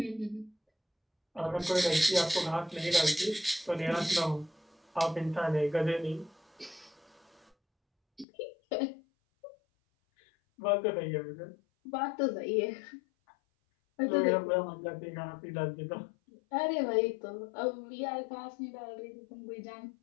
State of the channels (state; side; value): drops out; right; at 8.2 s